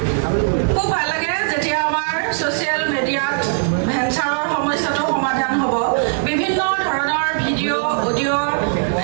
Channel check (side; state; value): left; silent; digital silence